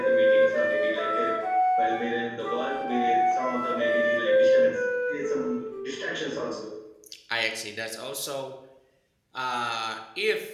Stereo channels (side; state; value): both; identical; correlation 1.00